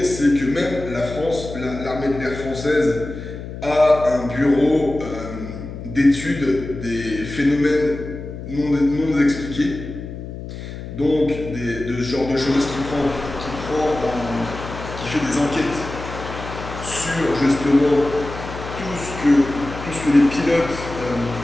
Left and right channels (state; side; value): noise; left; hum, 10 dB below the sound